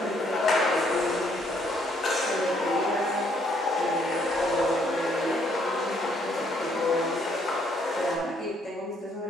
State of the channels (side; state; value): both; normal; correlation 0.68